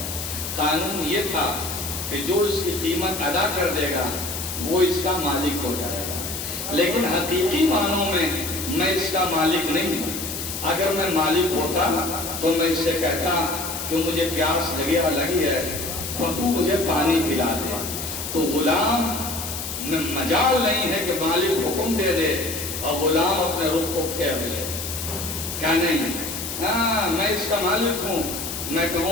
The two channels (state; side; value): noise; left; hiss, 6 dB below the sound